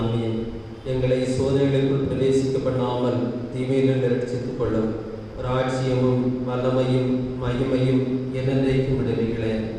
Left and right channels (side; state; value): both; identical; correlation 1.00